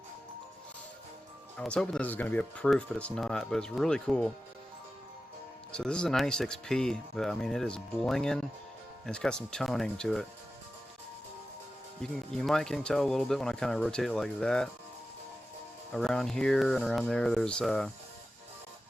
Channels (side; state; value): both; normal; correlation 0.93